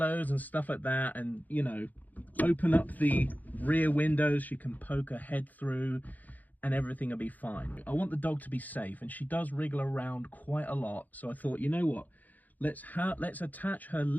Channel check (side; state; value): right; late; 0.081 ms